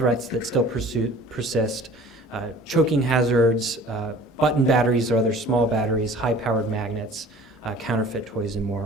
that still persist, choking hazards, button batteries or other small batteries, high-powered magnets, counterfeit toys, and more.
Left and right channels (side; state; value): both; normal; correlation 0.47